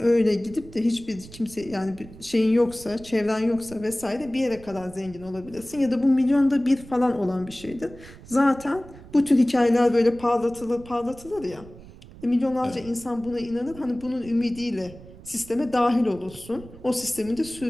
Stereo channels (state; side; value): noise; right; rumble, 18 dB below the sound